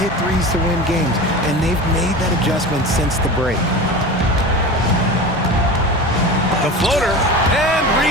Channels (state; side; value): normal; both; correlation 0.30